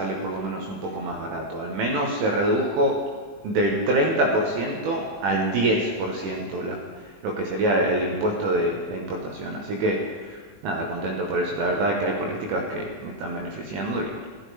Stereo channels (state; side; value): late; left; 18 ms